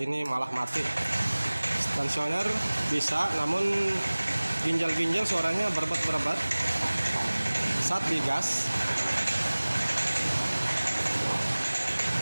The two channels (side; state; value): both; inverted; correlation -1.00